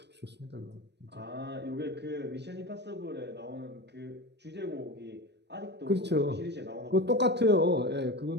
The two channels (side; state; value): left; late; 0.50 ms